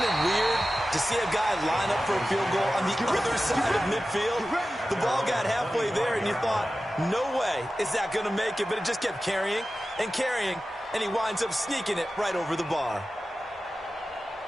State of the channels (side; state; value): both; normal; correlation 0.94